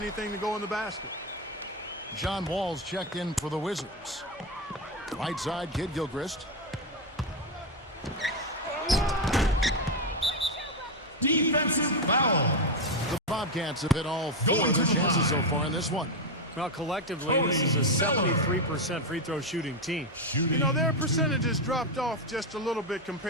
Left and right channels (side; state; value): both; normal; correlation 0.08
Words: to go in the basket. John Wall's checked in for the Wizards. Right side, Kidd-Gilchrest. Defensive foul. The Bobcats have hit all 4 of their chances so far in this one. Well, collectively, this is a 73% free throw shooting team. You know, their percentages dropped off just a little bit